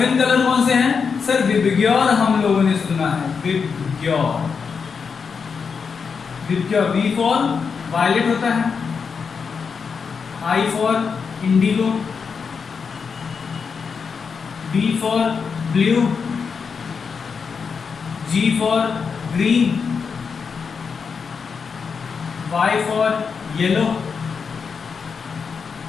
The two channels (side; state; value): right; quieter; 5.7 dB